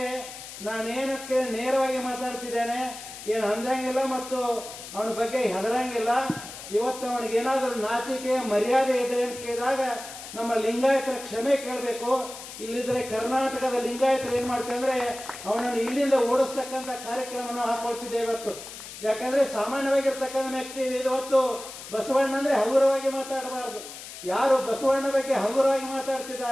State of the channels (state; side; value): noise; left; hiss, 12 dB below the sound